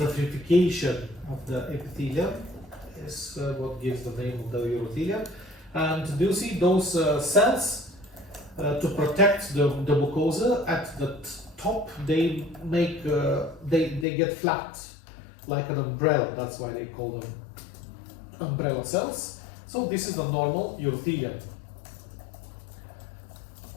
of the epithelium is what gives the name of the urothelium. And do you see those cells? To protect the mucosa at the top, they make they get flat like an umbrella. That's why they call them umbrella cells. So this is the normal urothelium.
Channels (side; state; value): right; drops out; at 14.1 s